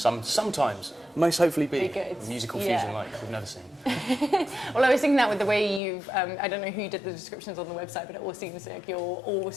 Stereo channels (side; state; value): right; drops out; at 5.8 s